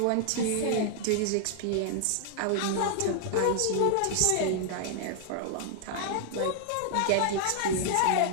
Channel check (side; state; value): both; different; correlation 0.00